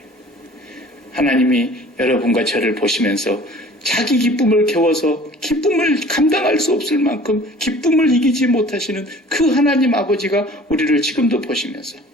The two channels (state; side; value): normal; both; correlation 0.48